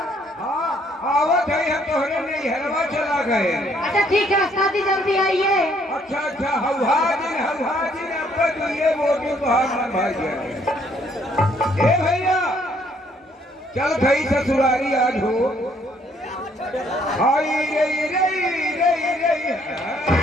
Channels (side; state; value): both; normal; correlation 0.66